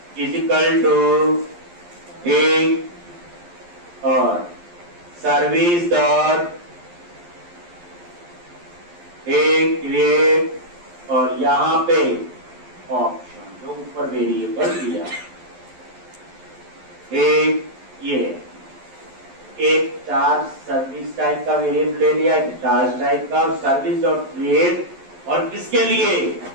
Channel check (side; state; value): left; late; 11 ms